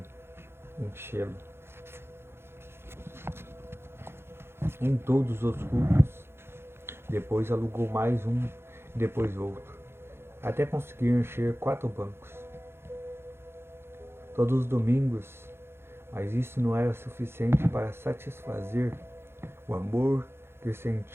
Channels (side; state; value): left; late; 0.12 ms